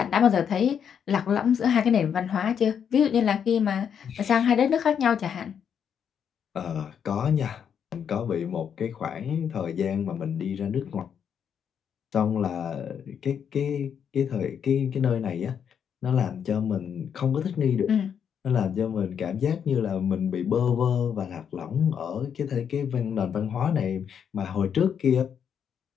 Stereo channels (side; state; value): right; quieter; 7.9 dB